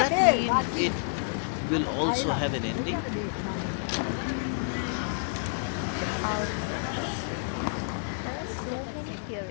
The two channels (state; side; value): silent; right; digital silence